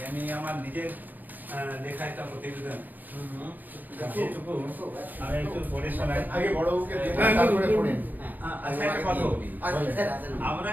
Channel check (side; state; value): left; late; 0.085 ms